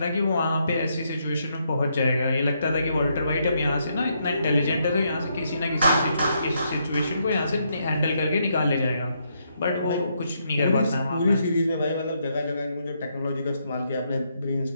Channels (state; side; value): inverted; both; correlation -0.77